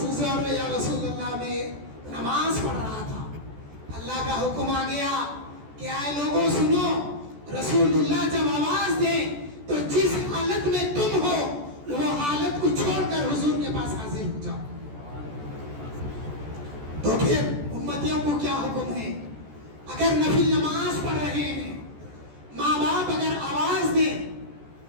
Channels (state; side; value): late; left; 14 ms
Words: گزار یا رسول اللہ میں نماز پڑھ رہا تھا، اللہ کا حکم آ گیا کہ آئے لوگوں سنو، رسول اللہ جب آواز دیں تو جس حالت میں تم ہو وہ حالت کو چھوڑ کر حضور کے پاس حاضر ہو جاؤ۔ تو پھر امتیوں کو کیا حکم ہے؟ اگر نفل نماز پڑھ رہے ہیں، ماں باپ اگر آواز دیں،